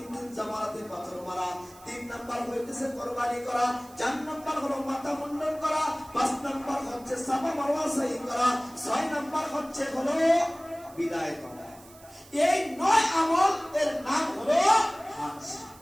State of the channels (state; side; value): noise; right; hiss, 23 dB below the sound